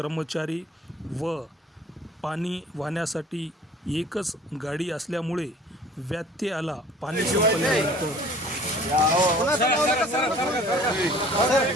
व पाणी वाहण्यासाठी एकच गाडी असल्यामुळे व्यत्यय आला। पाणी संपल्यानंतर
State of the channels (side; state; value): both; normal; correlation 0.50